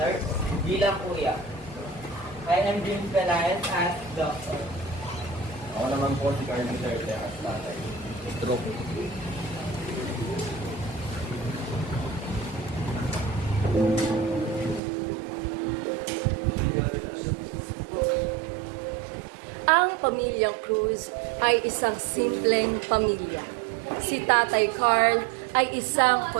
bilang kuya. I am James Pelayan as doctor. Ako naman po si Carmen Duterte as tatay. Stroke. Ang pamilyang Cruz ay isang simpleng pamilya. Si Tatay Carl ay isang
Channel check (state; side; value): drops out; left; at 14.8 s